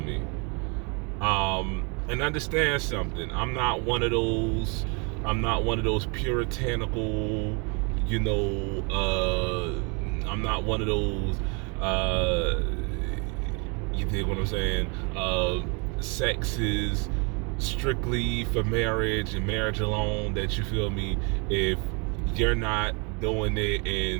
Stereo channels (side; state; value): left; quieter; 33.0 dB